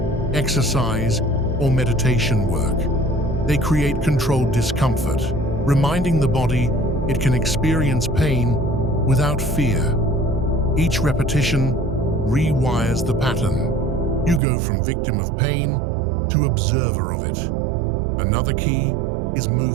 exercise, or meditation work. They create controlled discomfort, reminding the body it can experience pain without fear. Each repetition rewires the pattern. You go from victim of pain to observer of it. Another key is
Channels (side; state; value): left; drops out; at 14.4 s